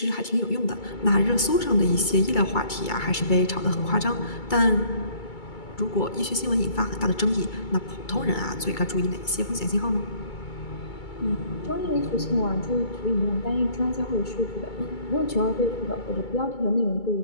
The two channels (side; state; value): right; late; 2.3 ms